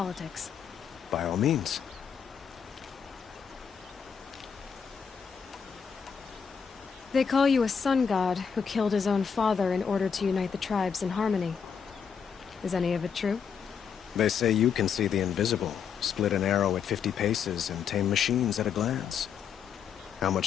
By all means. They call you a sun god who killed his own father in order to unite the tribes in harmony. Is any of it true? They say you can see the invisible, split an arrow at 50 paces, and tame machines at a glance. How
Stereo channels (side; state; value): right; quieter; 6.9 dB